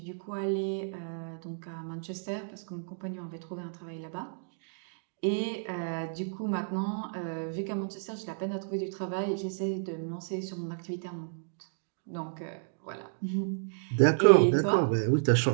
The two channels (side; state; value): left; silent; digital silence